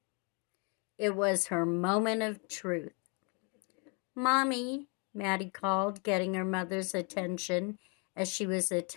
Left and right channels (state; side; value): quieter; right; 35.1 dB